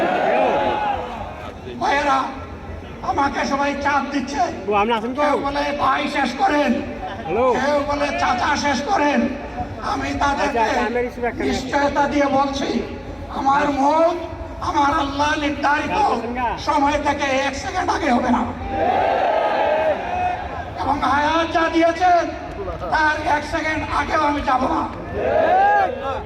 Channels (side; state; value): both; identical; correlation 1.00